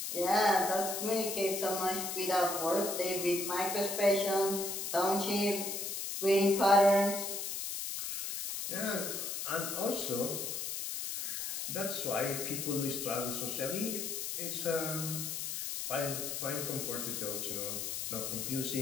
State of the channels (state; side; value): noise; left; hiss, 4 dB below the sound